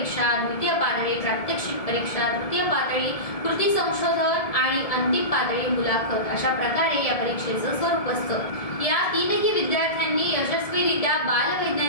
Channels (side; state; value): right; late; 1.7 ms